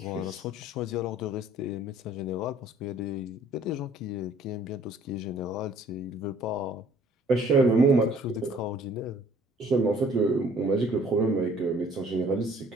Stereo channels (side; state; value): both; normal; correlation 0.56